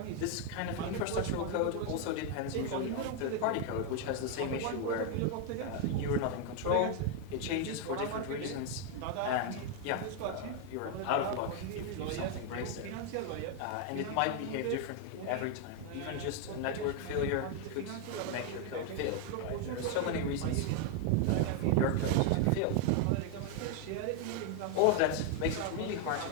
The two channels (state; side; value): different; both; correlation 0.01